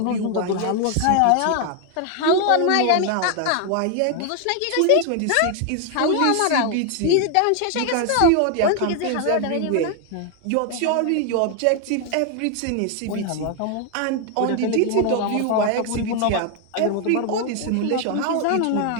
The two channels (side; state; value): both; different; correlation 0.01